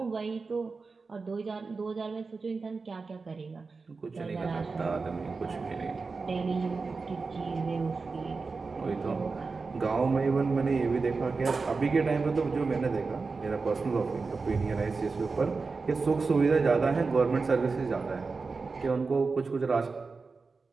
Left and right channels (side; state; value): left; quieter; 4.3 dB